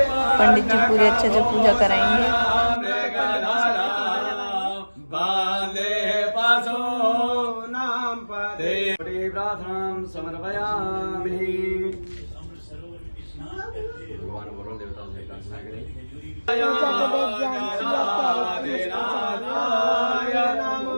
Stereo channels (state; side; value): inverted; both; correlation -1.00